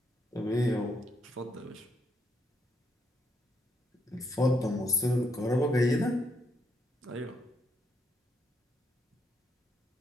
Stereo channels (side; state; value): both; normal; correlation 0.75